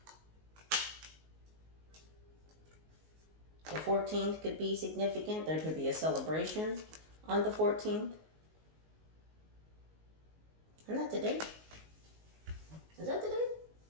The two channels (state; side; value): late; left; 19 ms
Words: The 14th could be significant. There could be a celebration on the 14th. Isn't that today? Is that today?